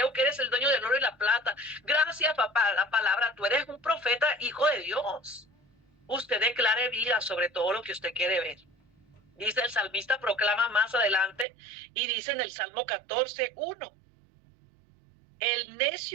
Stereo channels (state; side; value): drops out; left; at 11.5 s